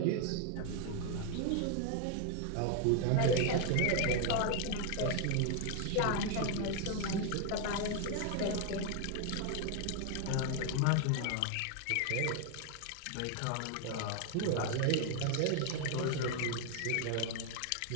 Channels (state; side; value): different; both; correlation 0.00